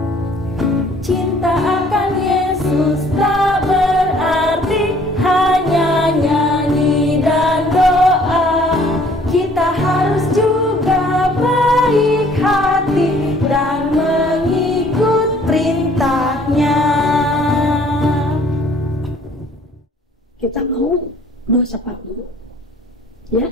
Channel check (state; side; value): normal; both; correlation 0.57